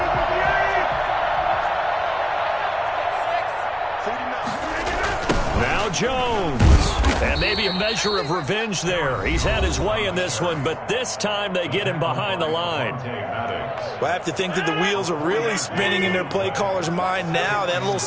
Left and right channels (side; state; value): both; identical; correlation 1.00